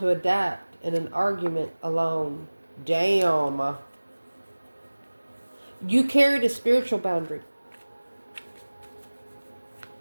adapt in an argument alone. Damn. You carried a spiritual boundary.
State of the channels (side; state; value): both; inverted; correlation -1.00